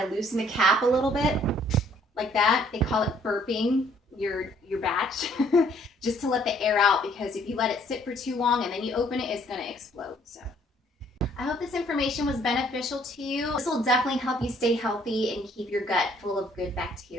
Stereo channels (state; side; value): normal; both; correlation 0.62